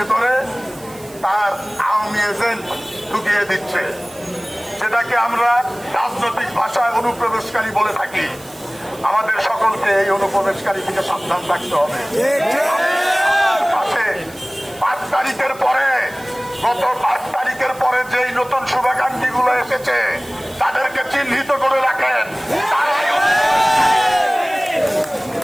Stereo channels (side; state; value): right; noise; hiss, 21 dB below the sound